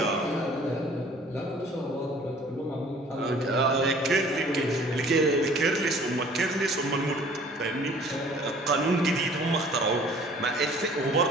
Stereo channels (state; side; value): normal; both; correlation 0.52